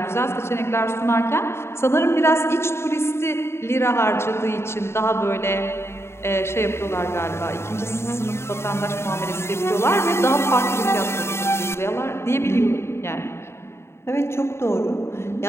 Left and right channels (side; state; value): right; late; 0.12 ms